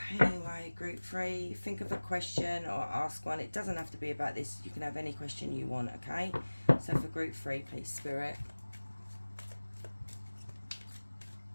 anyway, group 3, think of a question or ask one. It doesn't have to be about this. You can have any question you want, okay? So for group 3, please, Spirit.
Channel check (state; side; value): inverted; both; correlation -1.00